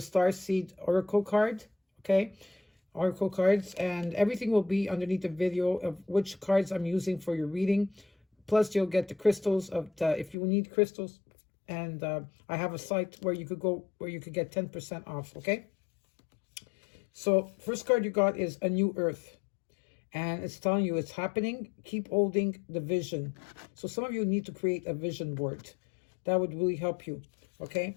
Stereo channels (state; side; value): drops out; right; at 10.4 s